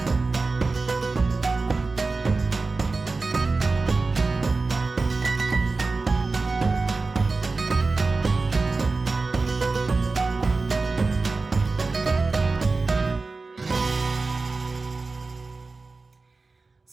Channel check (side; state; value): left; quieter; 3.8 dB